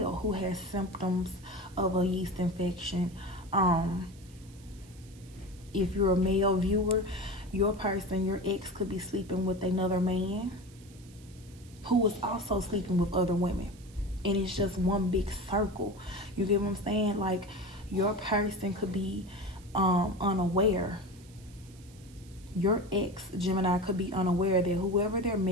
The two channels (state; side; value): noise; right; hiss, 25 dB below the sound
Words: who has symptoms of a yeast infection. If you're a male viewer, your person, your ex, could be sleeping with another man who is also sleeping with other women. And it's just one big circle. You get what I'm saying? Like, your person could be unaware. Your ex, Gemini, could be unaware that whoever they're